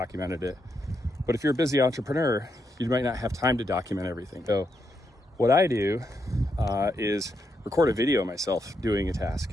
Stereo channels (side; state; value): both; normal; correlation 0.81